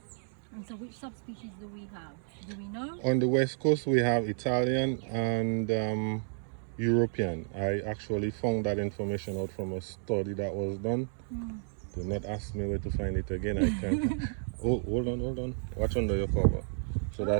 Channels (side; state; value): left; silent; digital silence